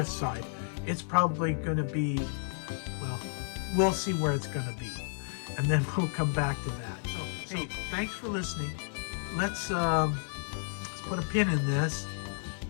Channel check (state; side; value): silent; right; digital silence